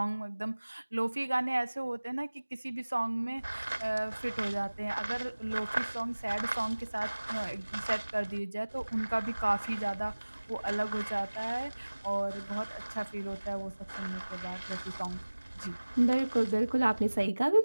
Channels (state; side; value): inverted; both; correlation -1.00